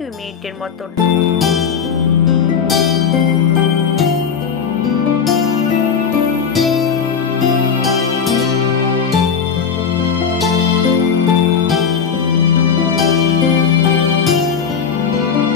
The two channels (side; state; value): right; quieter; 6.6 dB